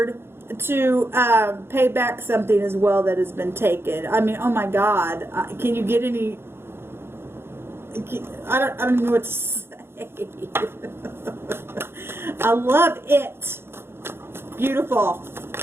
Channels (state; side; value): late; left; 0.11 ms